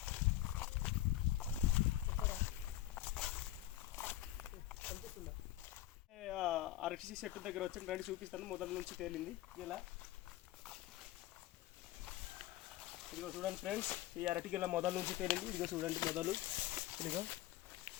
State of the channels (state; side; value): quieter; right; 14.5 dB